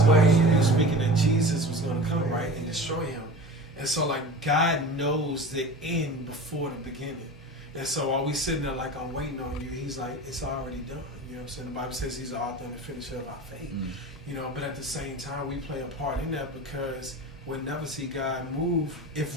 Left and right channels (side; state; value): both; normal; correlation 0.34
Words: waiting. He was speaking that Jesus was going to come, right, and destroy him. And so, like, God knows the end before the beginning. And so while we sitting there like, I'm waiting on you, he's like, it's already done. You know what I'm saying? The Bible says he's the author and the finisher of our faith. You know, but at the same time, we play a part in that because we'll never see God move